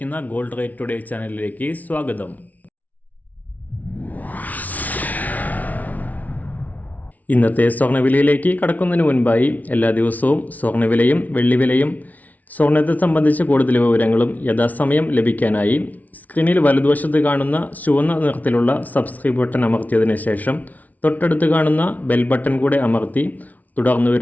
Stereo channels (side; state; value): right; late; 0.074 ms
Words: ഗോൾഡ് റേറ്റ് ടുഡേ ചാനലിലേക്ക് സ്വാഗതം. ഇന്നത്തെ സ്വർണ്ണവിലയിലേക്ക് കടക്കുന്നതിന് മുൻപായി എല്ലാ ദിവസവും സ്വർണ്ണവിലയും വെള്ളിവിലയും സ്വർണ്ണത്തെ സംബന്ധിച്ച് കൂടുതൽ വിവരങ്ങളും യഥാസമയം ലഭിക്കാനായി സ്ക്രീനിൽ വലതുവശത്ത് കാണുന്ന ചുവന്ന നിറത്തിലുള്ള സബ്സ്ക്രൈബ് ബട്ടൺ അമർത്തിയതിനു ശേഷം തൊട്ടടുത്ത് കാണുന്ന ബെൽ ബട്ടൺ കൂടെ അമർത്തി തുടർന്ന്